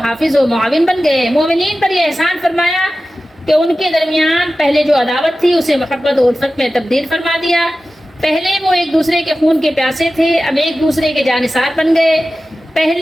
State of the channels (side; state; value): both; normal; correlation 0.95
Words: و معاون بن گئے. مومنین پر یہ احسان فرمایا کہ ان کے درمیان پہلے جو عداوت تھی اسے محبت و الفت میں تبدیل فرما دیا. پہلے وہ ایک دوسرے کے خون کے پیاسے تھے، اب ایک دوسرے کے جانثار بن گئے.